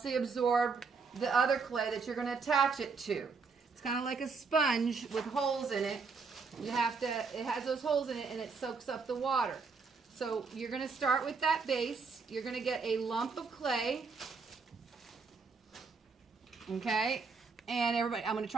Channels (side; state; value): left; quieter; 4.9 dB